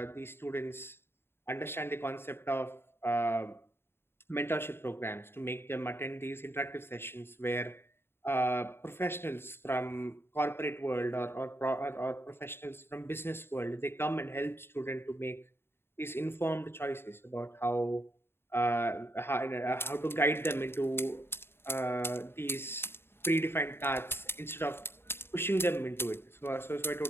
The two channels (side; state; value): right; late; 0.11 ms